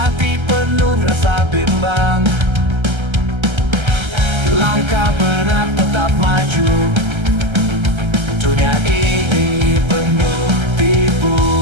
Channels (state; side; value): late; left; 1.3 ms